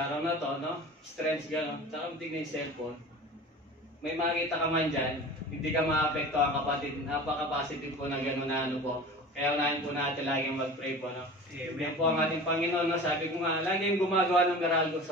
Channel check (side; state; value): both; normal; correlation 0.37